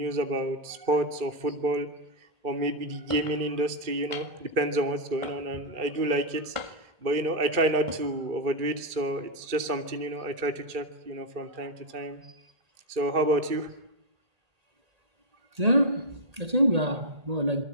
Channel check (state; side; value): late; left; 2.3 ms